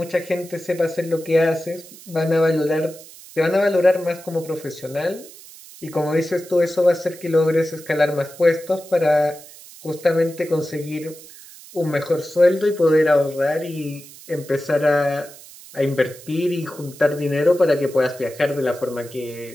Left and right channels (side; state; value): right; noise; hiss, 19 dB below the sound